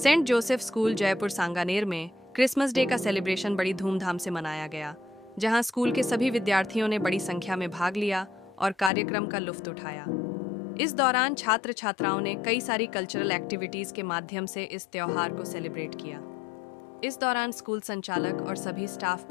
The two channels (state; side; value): drops out; right; at 8.9 s